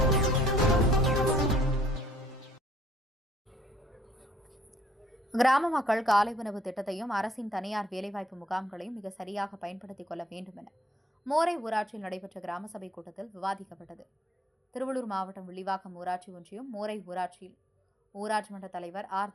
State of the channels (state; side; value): normal; both; correlation 0.63